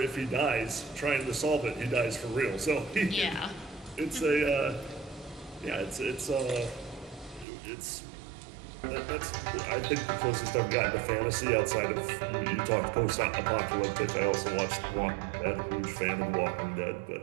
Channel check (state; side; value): drops out; left; at 7.5 s